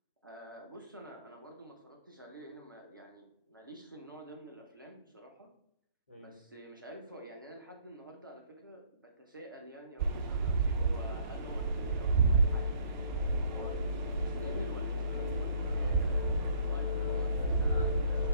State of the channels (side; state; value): both; inverted; correlation -0.61